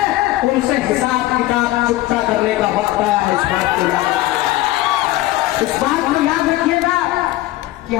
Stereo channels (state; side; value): quieter; right; 16.8 dB